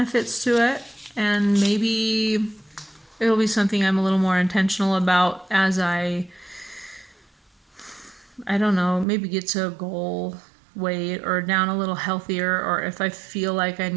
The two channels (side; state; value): left; drops out; at 9.1 s